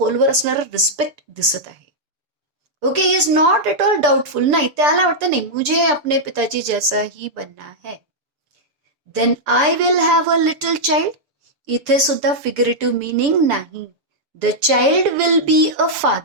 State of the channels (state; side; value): late; left; 6.8 ms